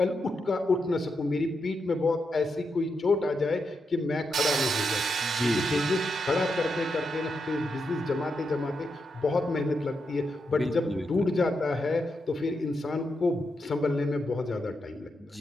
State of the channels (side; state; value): both; normal; correlation 0.84